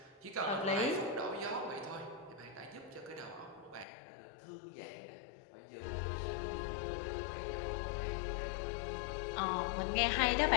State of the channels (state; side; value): drops out; right; at 3.9 s